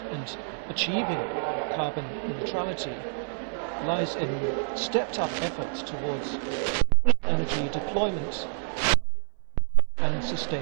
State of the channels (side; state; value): left; silent; 60 dB below the other